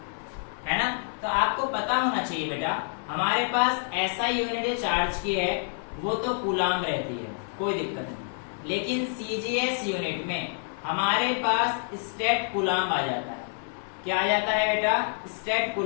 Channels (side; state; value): right; silent; 60 dB below the other